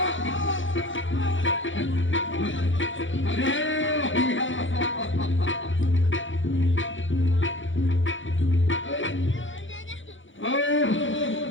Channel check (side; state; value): right; late; 0.56 ms